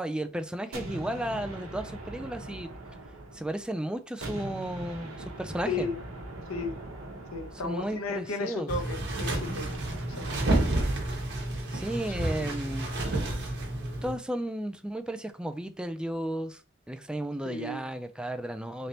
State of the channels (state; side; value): normal; both; correlation 0.74